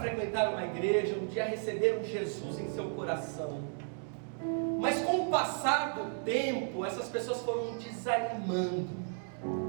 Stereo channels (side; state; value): left; silent; 55 dB below the other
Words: uma igreja, um dia receberam Jesus em seu coração, mas com o passar do tempo, essas pessoas foram desanimando.